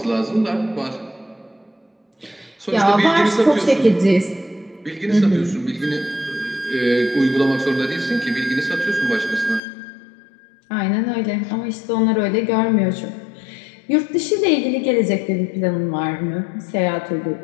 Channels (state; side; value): drops out; right; at 9.6 s